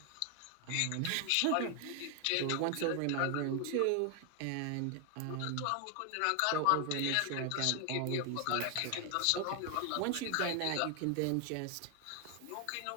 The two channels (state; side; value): different; both; correlation 0.00